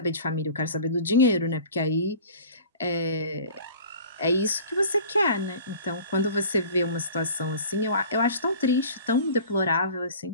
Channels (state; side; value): inverted; both; correlation -0.43